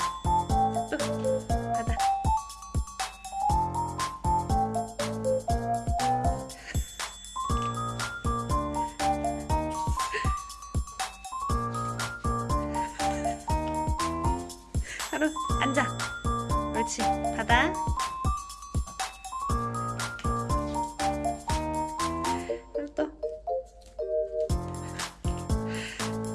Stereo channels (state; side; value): identical; both; correlation 1.00